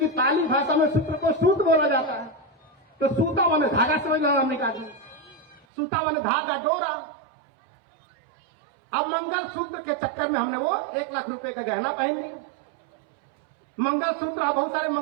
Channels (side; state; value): left; drops out; at 5.6 s